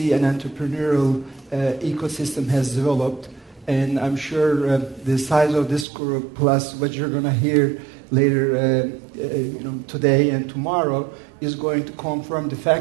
and entrepreneurial ecosystem has developed. And I'm sure the size of this group, plus what you're going to hear later today and tomorrow, is going to confirm the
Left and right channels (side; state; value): left; drops out; at 5.9 s